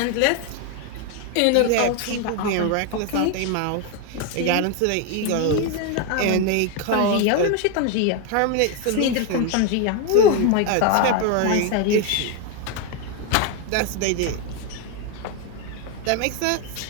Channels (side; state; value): both; different; correlation 0.01